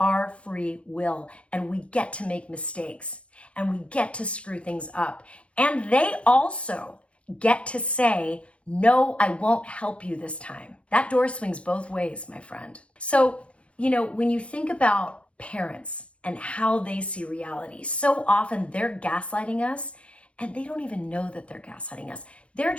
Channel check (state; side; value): late; right; 0.061 ms